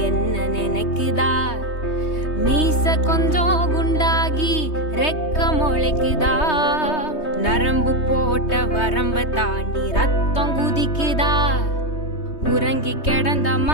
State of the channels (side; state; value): right; late; 3.2 ms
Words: என்ன நினைக்குதா, மீச கொஞ்சம் குண்டாகி ரெக்க முளைக்குதா, நரம்பு போட்ட வரம்ப தாண்டி ரத்தம் குதிக்குதா, உறங்கி கிடந்த